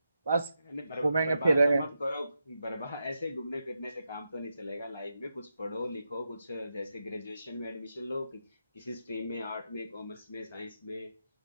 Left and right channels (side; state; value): both; inverted; correlation -0.86